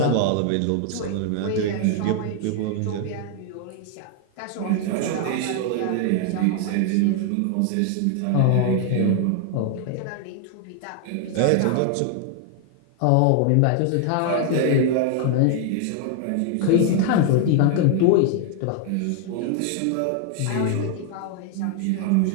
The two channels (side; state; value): both; different; correlation 0.00